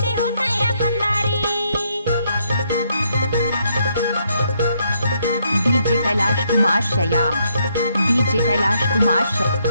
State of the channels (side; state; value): both; inverted; correlation -0.74